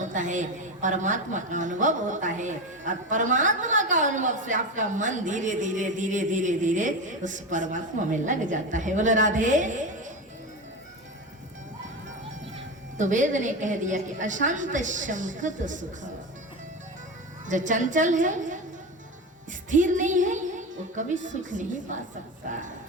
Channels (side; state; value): both; normal; correlation 0.21